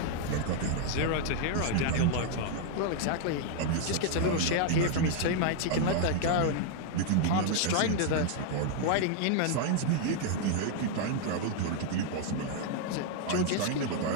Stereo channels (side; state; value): both; different; correlation 0.00